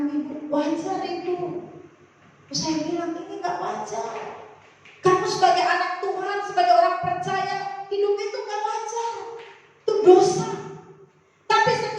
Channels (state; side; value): identical; both; correlation 1.00